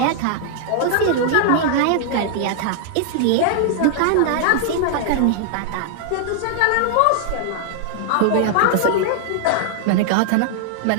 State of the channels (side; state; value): both; different; correlation -0.01